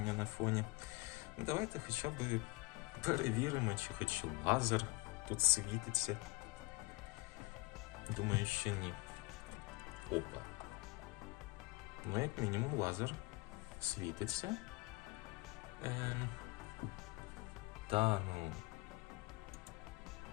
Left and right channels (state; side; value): quieter; right; 22.7 dB